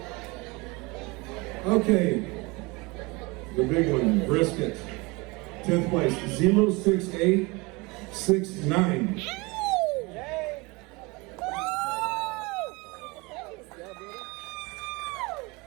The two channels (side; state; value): left; quieter; 25.5 dB